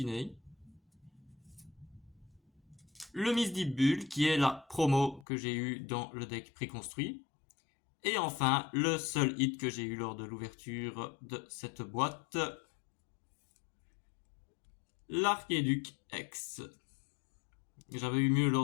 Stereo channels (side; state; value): right; drops out; at 5.2 s